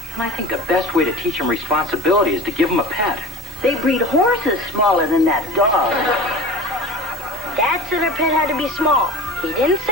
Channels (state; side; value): normal; both; correlation 0.37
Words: And I think the best way to teach him responsibility is to give him a pet. They breed horses smaller than that dog. Dad said our pet had to be small. He didn't say